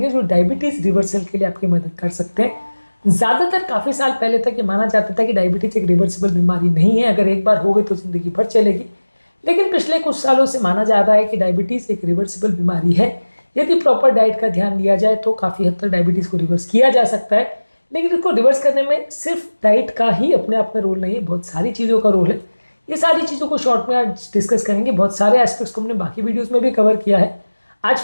जो डायबिटीज रिवर्सल के लिए आपकी मदद कर सकते हैं। ज़्यादातर काफ़ी साल पहले तक ये माना जाता था कि डायबिटीज एक रिवर्सिबल बीमारी नहीं है, अगर एक बार हो गई तो ज़िंदगी भर चलेगी। लेकिन पिछले कुछ सालों से माना जा रहा है कि डायबिटीज एक रिवर्सिबल बीमारी है। यदि प्रॉपर डाइट का ध्यान लिया जाए तो काफ़ी हद तक डायबिटीज को रिवर्स किया जा सकता है। लेकिन इसको रिवर्स करने में सिर्फ डाइट का ही अपने आप में रोल नहीं है, बहुत सारी चीज़ों का रोल है। ये सारी चीज़ों को शॉर्ट में आज डिस्कस करेंगे। बहुत सारे एस्पेक्ट्स को हमने बाकी वीडियोस में भी कवर किया है। आज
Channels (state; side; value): inverted; both; correlation -1.00